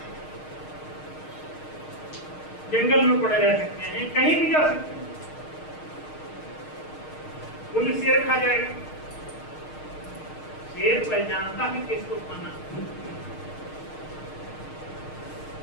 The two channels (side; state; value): right; late; 6.5 ms